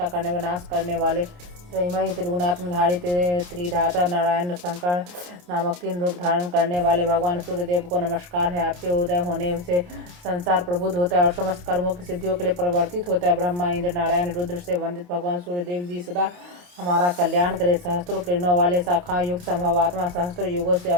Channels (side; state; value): left; late; 28 ms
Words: करने व नाश करने वाले, त्रयमयी त्रिगुणात्मधारी त्रिधाता नारायण शंकर नामक 3 रूप धारण करने वाले भगवान सूर्यदेव को नमस्कार है। आपके उदय होने से संसार प्रबुद्ध होता है और समस्त कर्मों की सिद्धियों के लिए परिवर्तित होता है। ब्रह्मा, इंद्र, नारायण, रुद्र से वंदित भगवान सूर्यदेव जी सदा हमारा कल्याण करे। सहस्त्रों किरणों वाले, शाखा युक्त, संभवात्मा, सहस्त्र युगों से